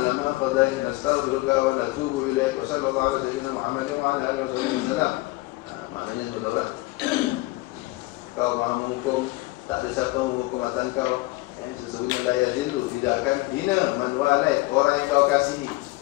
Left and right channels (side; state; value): right; quieter; 21.1 dB